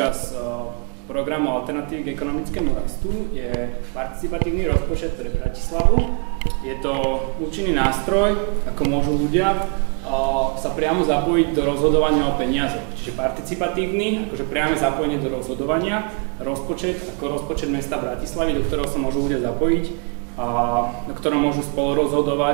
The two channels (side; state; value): left; quieter; 36.2 dB